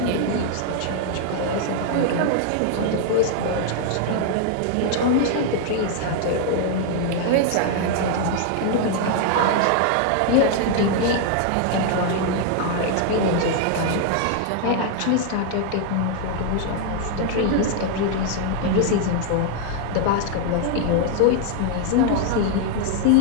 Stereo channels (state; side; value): different; both; correlation 0.00